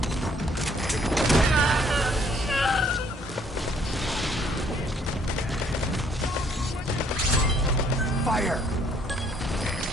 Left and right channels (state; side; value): normal; both; correlation 0.64